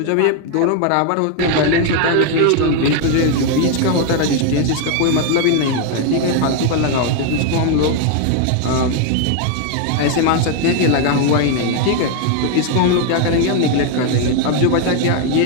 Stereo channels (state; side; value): different; both; correlation 0.01